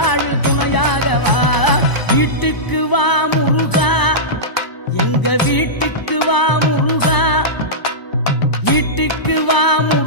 துணையாகவா. வீட்டுக்கு வா முருகா, எங்க வீட்டுக்கு வா முருகா. வீட்டுக்கு வா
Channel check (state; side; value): late; right; 1.0 ms